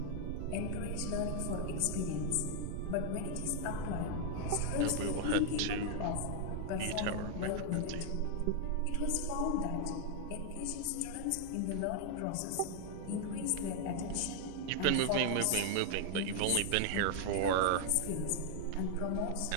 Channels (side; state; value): both; different; correlation 0.00